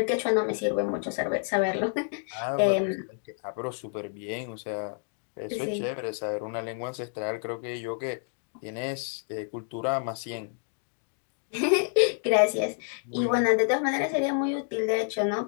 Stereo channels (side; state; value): right; silent; 59 dB below the other